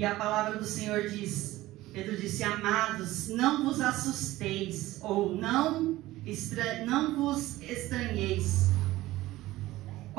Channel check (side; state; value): left; quieter; 17.0 dB